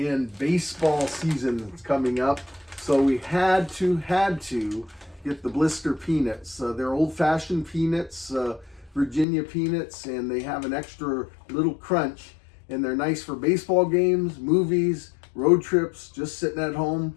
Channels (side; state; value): right; drops out; at 9.2 s